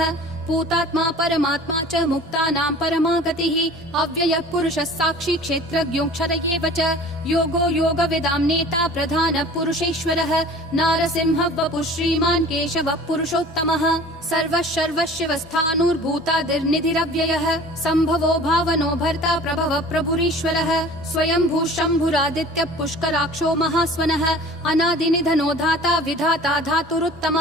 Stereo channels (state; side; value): normal; both; correlation 0.44